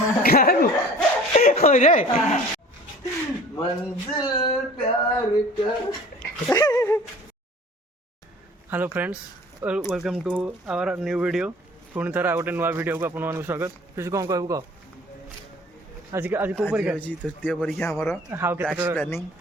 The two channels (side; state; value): both; normal; correlation 0.46